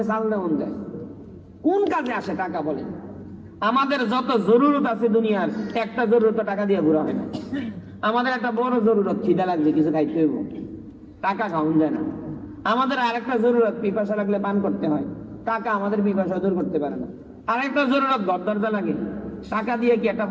চাল দেওয়ান যায়। কোন কাজে আসে টাকা বলে? আমাদের যত জরুরত আছে দুনিয়ার, একটা জরুরত টাকা দিয়ে ঘুরা হয় না। আমাদের একটা বড় জরুরত, খিদা লাগছে কিছু খাইতে হইব, টাকা খাওয়ান যায় না। আমাদের আরেকটা জরুরত, পিপাসা লাগলে পান করতে হয়, টাকা আমাদের পিপাসা দূর করতে পারে না। আরেকটা জরুরত, ঘর দরজা লাগে, টাকা দিয়ে কি একটা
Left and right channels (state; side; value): identical; both; correlation 1.00